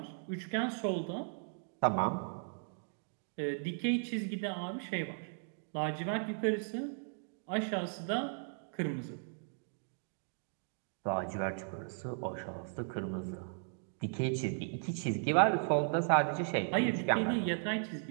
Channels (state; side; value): silent; left; digital silence